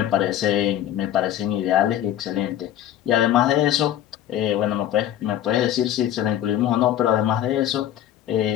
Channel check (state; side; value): quieter; right; 11.6 dB